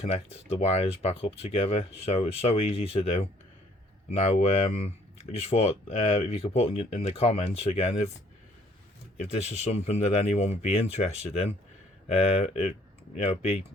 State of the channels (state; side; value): normal; both; correlation 0.61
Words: the wires back up together. So it's so easy to do. Now I just thought if you could put in the comments again if this is something that anyone would be interested in. It'd be